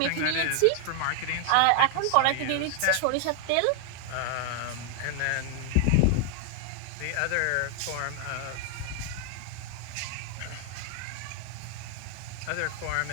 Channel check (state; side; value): different; both; correlation 0.00